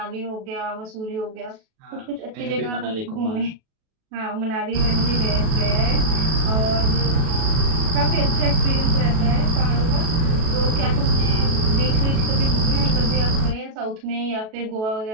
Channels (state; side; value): late; left; 37 ms